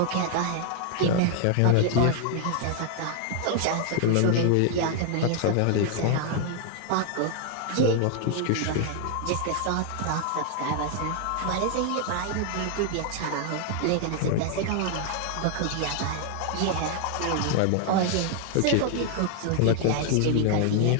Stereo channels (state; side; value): different; both; correlation 0.00